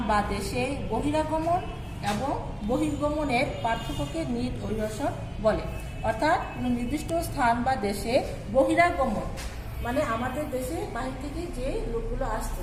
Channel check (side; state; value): both; identical; correlation 1.00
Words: বা দেশে বহিরাগমন এবং বহির্গমনের পার্থক্যকে নিট অভিবাসন বলে। অর্থাৎ কোনো নির্দিষ্ট স্থান বা দেশে বহিরাগমন মানে আমাদের দেশে বাহির থেকে যে লোকগুলো আসছে